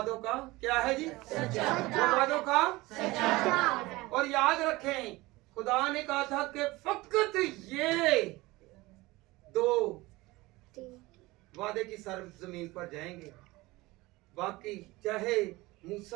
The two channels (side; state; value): left; quieter; 20.7 dB